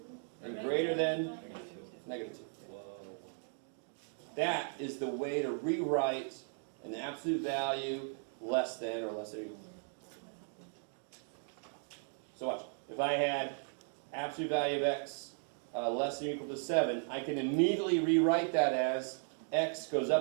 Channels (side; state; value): left; silent; 53 dB below the other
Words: and greater than negative 2. That is the way to rewrite an absolute value less than or less than or equal to. So watch. If I had absolute value of x less than or equal to 7, I can immediately rewrite that as x goes